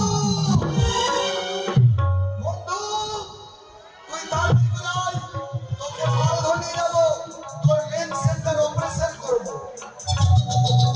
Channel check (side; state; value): both; identical; correlation 1.00